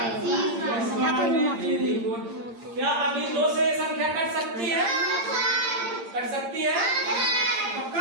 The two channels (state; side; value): late; left; 8.7 ms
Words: 30 बार में। Very good. क्या अभी 2 से संख्या कट सकती है? कट सकती है